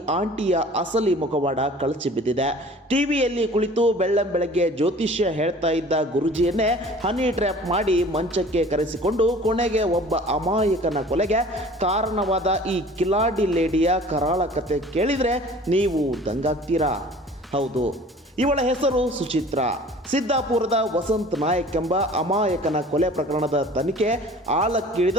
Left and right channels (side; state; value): both; normal; correlation 0.47